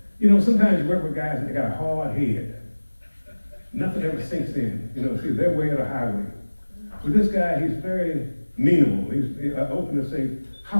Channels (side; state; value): both; inverted; correlation -1.00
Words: you know, sometimes you work with guys and they got a hard head. Nothing ever sinks in. You know, see, they're way of the highway. With this guy, he's very meanable. He's open to say,